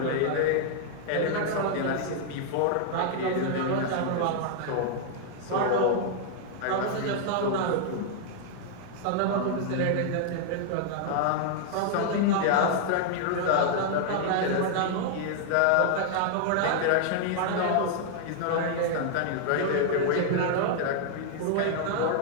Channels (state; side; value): different; both; correlation -0.01